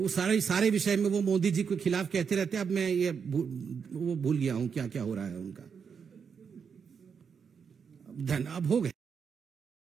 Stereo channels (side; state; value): left; quieter; 6.5 dB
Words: सारे विषय में वो मोदी जी के खिलाफ कहते रहते हैं। अब मैं ये वो भूल गया हूं क्या क्या हो रहा है उनका। अब हो गए।